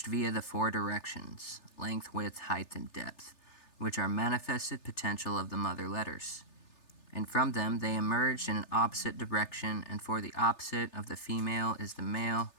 via the 4 directions, length, width, height, and depth, which are manifested potential of the mother letters. And from them they emerged in an opposite direction, and for the opposite of the female is the male,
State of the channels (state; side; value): late; right; 3.3 ms